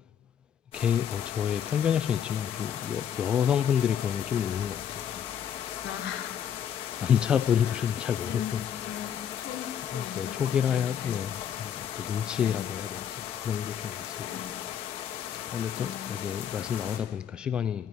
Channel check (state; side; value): quieter; right; 8.7 dB